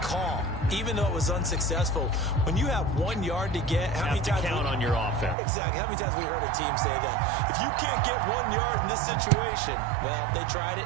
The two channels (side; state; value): left; drops out; at 5.4 s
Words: call, even though it was unsuccessful. When you have 1 yard to get, how many times count on your offense? Exactly. How many times have we heard a team say that? If you can't get 1 yard in this situation, well, they tried it,